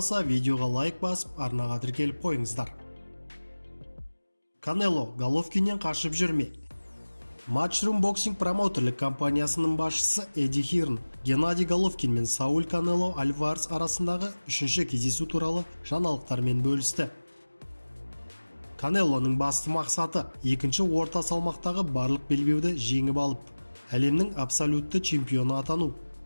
видеоға лайк басып, арнаға тіркеліп қойыңыздар. Канело Головкиннен қашып жүрме. Matchroom Boxing промоутерлік компаниясының басшысы Эдди Хирн Геннадий Головкин мен Сауль Канело Альварес арасындағы үшінші кездесу туралы жаңалықтармен бөлісті. Канелоның басты мақсаты екінші орта салмақтағы барлық белбеуді жеңіп алып, әлемнің абсолютті чемпионы атану.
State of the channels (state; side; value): inverted; both; correlation -1.00